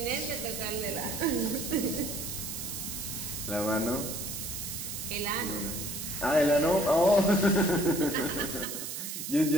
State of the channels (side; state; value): right; noise; hiss, 6 dB below the sound